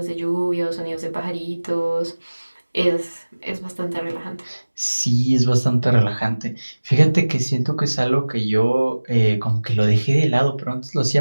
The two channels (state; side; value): inverted; both; correlation -1.00